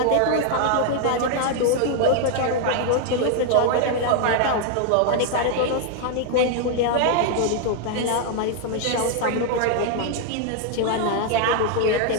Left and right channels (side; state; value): both; different; correlation 0.00